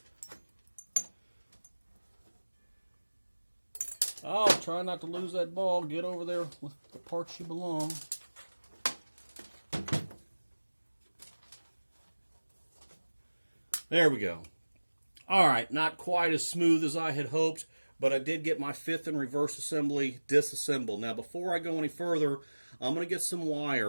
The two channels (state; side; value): inverted; both; correlation -1.00